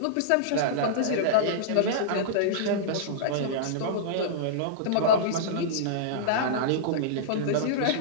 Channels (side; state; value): both; different; correlation -0.03